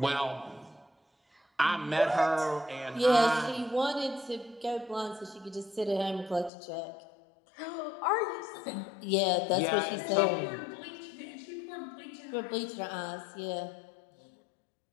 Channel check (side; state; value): right; drops out; at 6.5 s